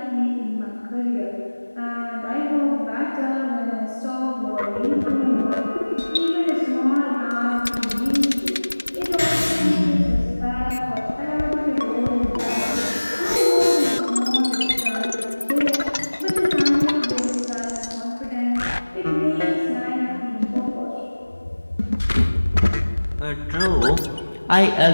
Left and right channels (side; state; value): both; inverted; correlation -1.00